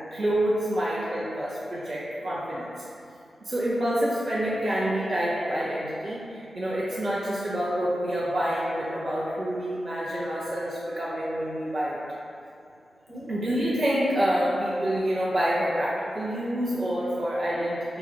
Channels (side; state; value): both; normal; correlation 0.91